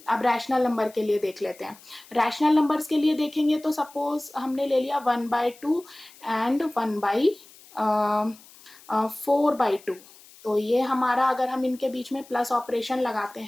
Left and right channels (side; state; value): left; noise; hiss, 23 dB below the sound